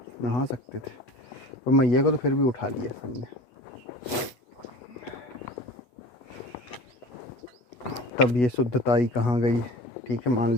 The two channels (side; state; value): right; late; 8.2 ms